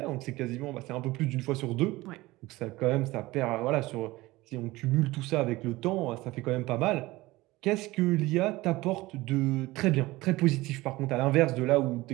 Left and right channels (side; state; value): left; quieter; 19.6 dB